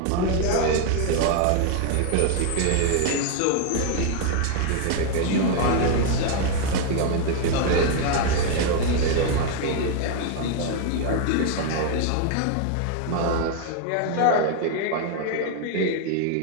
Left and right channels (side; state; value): both; different; correlation 0.00